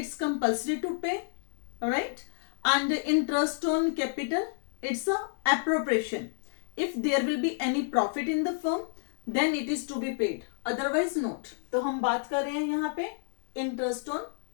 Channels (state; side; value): silent; right; 58 dB below the other